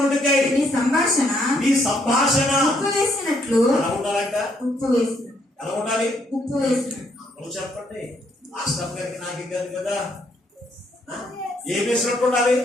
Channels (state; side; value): normal; both; correlation 0.72